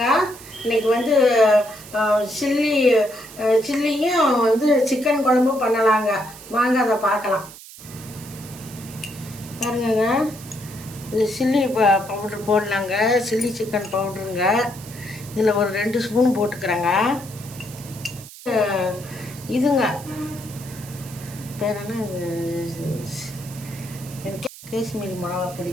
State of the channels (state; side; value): noise; right; hiss, 17 dB below the sound